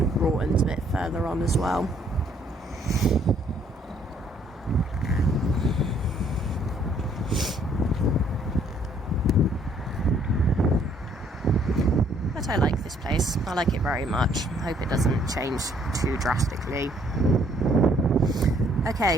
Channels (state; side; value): normal; both; correlation 0.64